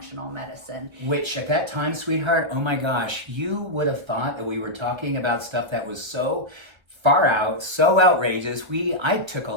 medicine. Which at that time, sweetheart, oh my gosh, you would have thought that we were talking about stuff that was so far out, so outrageous. I took a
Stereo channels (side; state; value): left; late; 1.1 ms